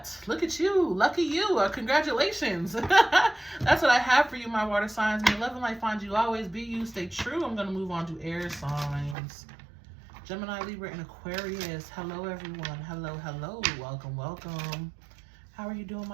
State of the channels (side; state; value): left; drops out; at 9.2 s